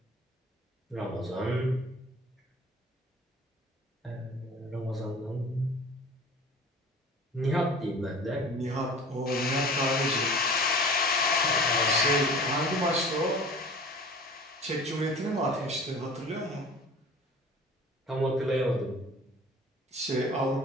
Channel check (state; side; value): normal; both; correlation 0.43